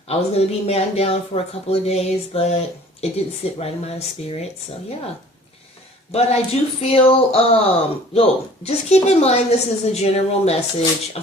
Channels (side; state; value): both; normal; correlation 0.50